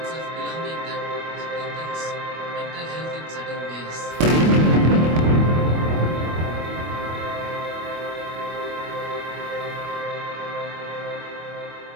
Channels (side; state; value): left; late; 25 ms